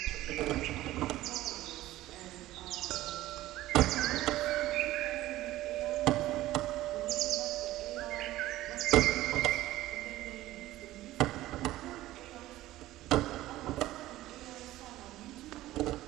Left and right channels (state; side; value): quieter; left; 15.8 dB